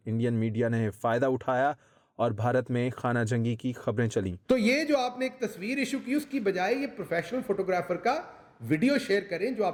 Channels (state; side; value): identical; both; correlation 1.00